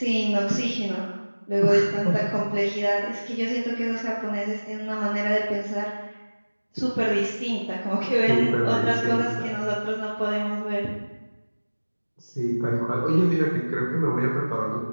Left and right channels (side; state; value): both; inverted; correlation -1.00